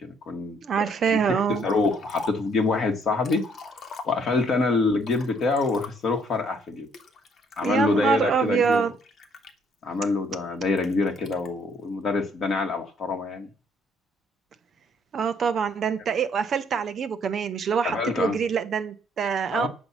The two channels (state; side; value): normal; both; correlation 0.65